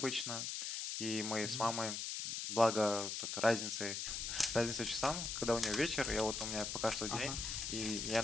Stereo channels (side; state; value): left; noise; hiss, 3 dB below the sound